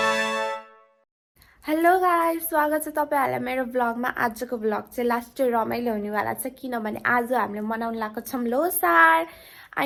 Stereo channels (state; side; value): identical; both; correlation 1.00